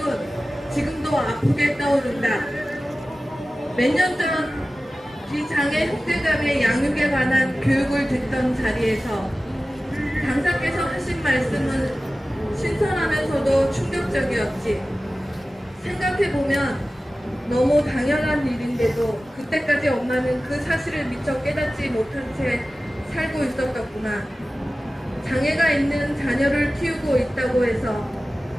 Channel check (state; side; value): normal; both; correlation 0.96